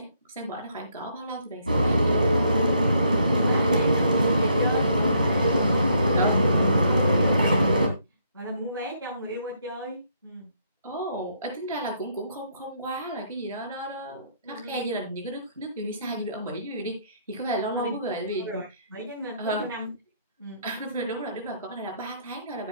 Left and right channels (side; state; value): both; inverted; correlation -0.71